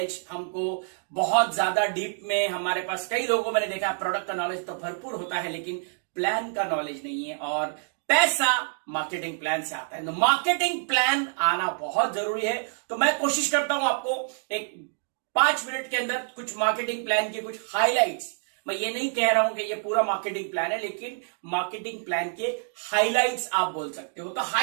हमको बहुत ज्यादा डीप में, हमारे पास कई लोगों मैंने देखा है प्रोडक्ट का नॉलेज तो भरपूर होता है, लेकिन प्लान का नॉलेज नहीं है, और पैसा मार्केटिंग प्लान से आता है। तो मार्केटिंग प्लान आना बहुत जरूरी है। तो मैं कोशिश करता हूं आपको एक 5 मिनट के अंदर कुछ मार्केटिंग प्लान के कुछ हाइलाइट्स, मैं ये नहीं कह रहा हूं कि ये पूरा मार्केटिंग प्लान है, लेकिन मार्केटिंग प्लान के हाइलाइट्स आप बोल सकते हो। तो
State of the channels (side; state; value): left; silent; digital silence